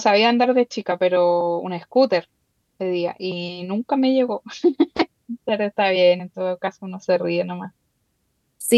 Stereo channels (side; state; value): both; identical; correlation 1.00